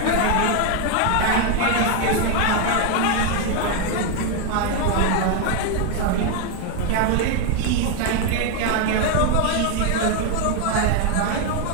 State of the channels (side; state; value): both; different; correlation 0.01